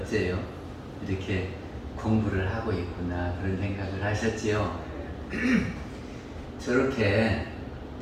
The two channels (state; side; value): identical; both; correlation 1.00